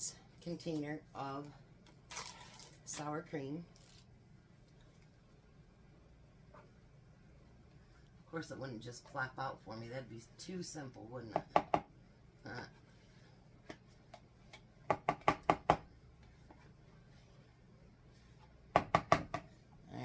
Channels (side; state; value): both; identical; correlation 1.00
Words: container of sour cream. Of course, it wouldn't just plop out for me. That'd be too simple, wouldn't it?